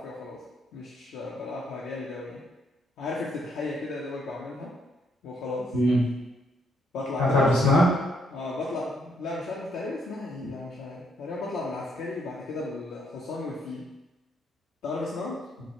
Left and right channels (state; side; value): normal; both; correlation 0.72